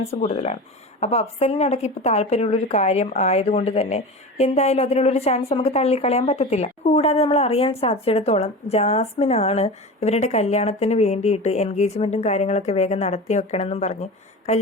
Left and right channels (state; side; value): normal; both; correlation 0.29